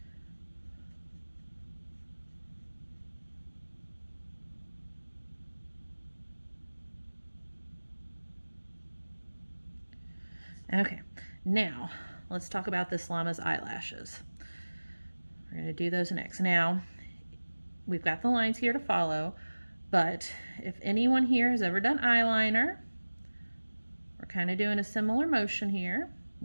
Okay, now let's talk about this llama's eyelashes. We're going to do those next. Now, we've got the lines here to follow, but if anyone here has ever done eyeliner, we're kind of doing a similar motion here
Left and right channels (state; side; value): inverted; both; correlation -1.00